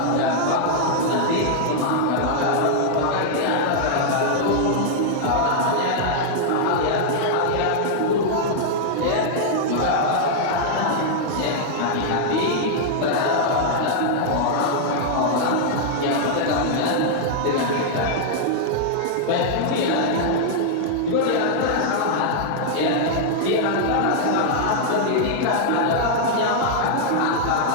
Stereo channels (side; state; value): both; different; correlation -0.01